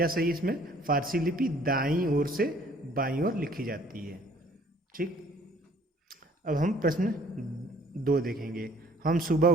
सही इसमें, फारसी लिपि दाईं ओर से बाईं ओर लिखी जाती है। ठीक, अब हम प्रश्न 2 देखेंगे। हम सुबह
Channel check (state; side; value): normal; both; correlation 0.57